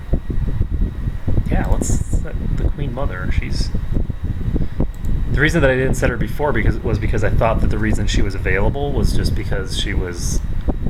Yeah, let's set the Queen Mother. She's... The reason that I didn't set her before was because I thought that the reason she was available was just because she was...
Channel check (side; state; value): both; identical; correlation 1.00